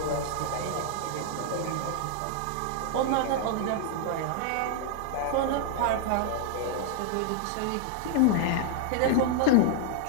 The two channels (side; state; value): both; different; correlation 0.00